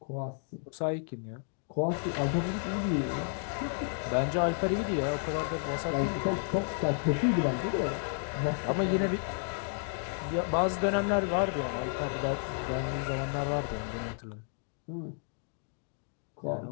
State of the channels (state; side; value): silent; right; 56 dB below the other